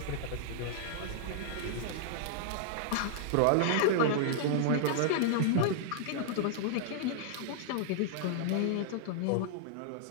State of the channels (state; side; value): different; both; correlation -0.01